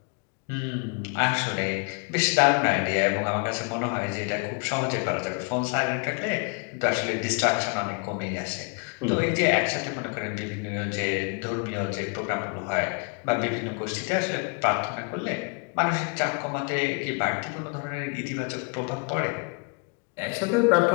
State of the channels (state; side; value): quieter; right; 35.3 dB